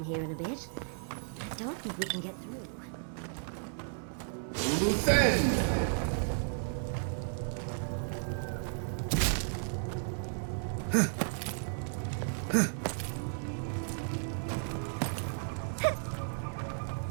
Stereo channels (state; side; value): silent; left; 55 dB below the other